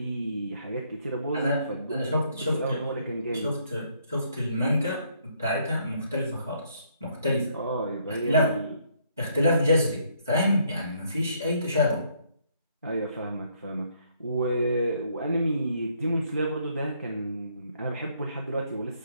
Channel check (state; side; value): inverted; both; correlation -0.69